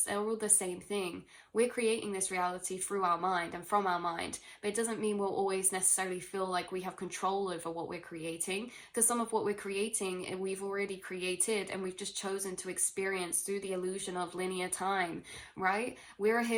they're all the same thing. We're creating this reality through our mind and from our mind, but it doesn't mean we'll always necessarily feel like we have control over what we're creating, because some of what we're creating we've already created and we've just chosen to experience through the illusion of linear time, right? We're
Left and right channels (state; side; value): identical; both; correlation 1.00